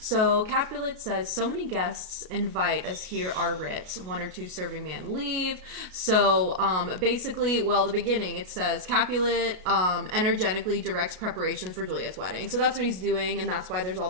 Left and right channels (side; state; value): left; late; 33 ms